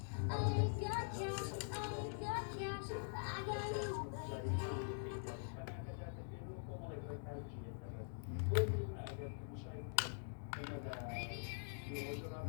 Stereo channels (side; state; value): right; silent; digital silence